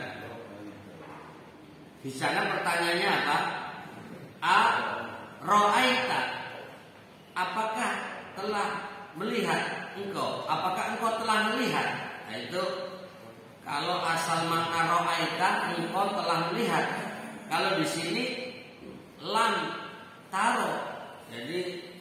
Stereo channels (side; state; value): both; identical; correlation 1.00